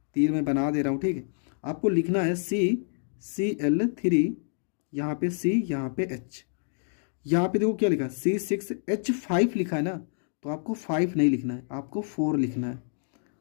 तीर मैं बना दे रहा हूँ, ठीक है। आपको लिखना है CCl3, यहाँ पे C, यहाँ पे H। यहाँ पे देखो क्या लिखा है, C6H5 लिखा है ना, तो आपको 5 नहीं लिखना है, आपको 4 लिखना है।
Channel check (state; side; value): silent; right; digital silence